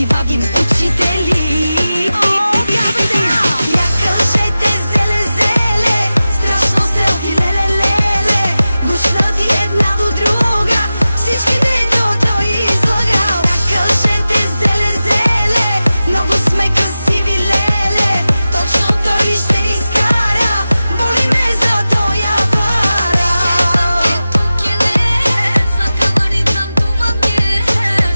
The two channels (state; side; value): inverted; both; correlation -0.95